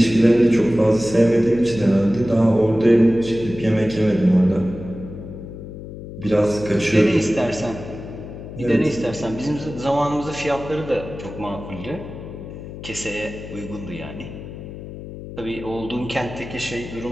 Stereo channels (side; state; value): left; noise; hum, 12 dB below the sound